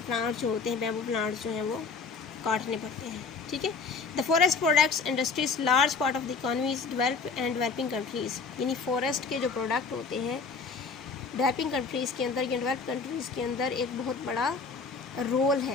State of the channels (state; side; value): quieter; right; 4.8 dB